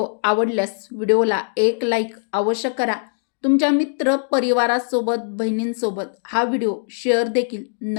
आवडल्यास व्हिडिओला एक लाईक अवश्य करा. तुमच्या मित्र परिवारासोबत बहिणींसोबत हा व्हिडिओ शेअर देखील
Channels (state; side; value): silent; right; digital silence